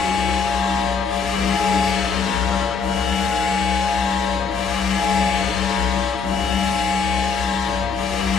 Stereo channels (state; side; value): quieter; right; 5.4 dB